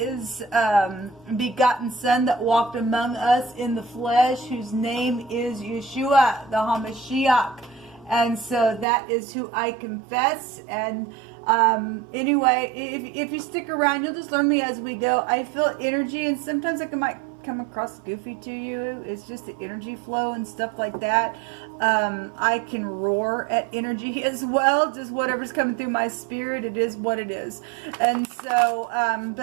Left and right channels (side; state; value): left; drops out; at 8.8 s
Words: begotten son that walked among us in the flesh, whose name is Yeshua, the HaMashiach. And so that is who I confess. And anyway, if you stick around, you'll just learn me as we go. I feel energy, and sometimes I might come across goofy to you. It's just the energy flow and stuff like that. I can roar at energy as well. Just whatever's coming through my spirit, it is what it is. And so,